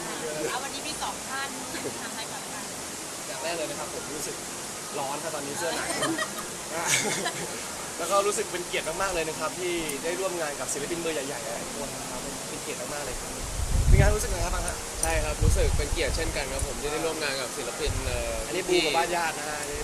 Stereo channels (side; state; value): both; identical; correlation 1.00